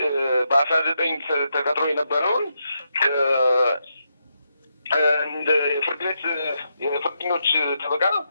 በ19 ተቀጥሮ የነበረውን እንደ ፍርድ ቤት የፍርደኞች ጠበቃ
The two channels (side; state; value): both; inverted; correlation -0.82